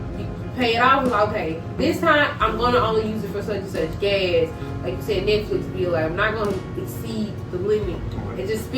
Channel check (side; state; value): both; identical; correlation 1.00